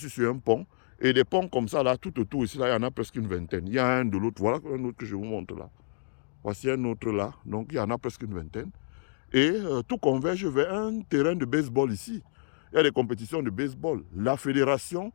sur un pont, et des ponts comme ça là, tout autour ici, là, il y en a presque une vingtaine. Il y a un de l'autre, voilà un autre que je vous montre là. Voici un autre là, donc il y en a presque une vingtaine. Et tout converge vers un terrain de baseball ici. Il y a des compétitions de baseball. La fédération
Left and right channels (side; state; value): right; silent; digital silence